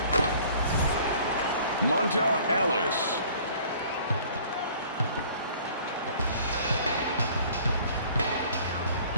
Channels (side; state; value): both; inverted; correlation -0.52